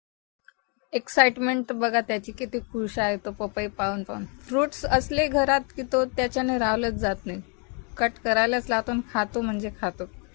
एक्साइटमेंट बघा त्याची, किती खुश आहे तो पपई पाहून. फ्रुट्स असले घरात की तो त्याच्याने राहलंच जात नाही, कट करायलाच लावतो आणि खातो म्हणजे खातो.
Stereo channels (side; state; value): right; quieter; 36.0 dB